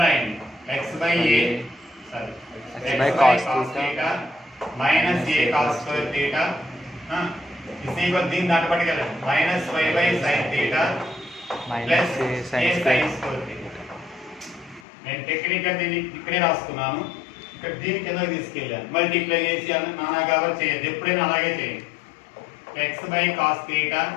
రాయండి x by a sorry x by cos theta minus a cos square theta is equal దీని దాంట్లో పట్టుకెళ్ళండి minus y by sin theta plus minus a sin square theta నేను technical దీన్ని ఇక్కడే రాసుకున్నాను ఇక్కడ దీని కిందకి తీసుకెళ్ళాను మల్టిప్లై చేసి నానా కవర్ చేయొద్దు ఎప్పుడైనా అలాగే చేయండి x by cos theta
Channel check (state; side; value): drops out; right; at 14.8 s